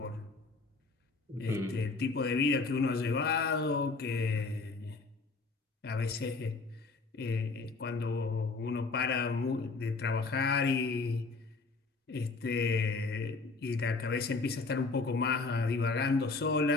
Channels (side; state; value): right; quieter; 3.9 dB